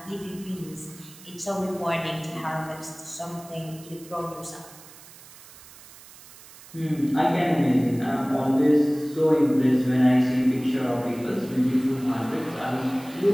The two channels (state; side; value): noise; right; hiss, 20 dB below the sound